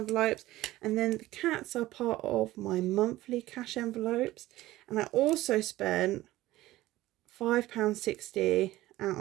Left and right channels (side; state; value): left; quieter; 16.7 dB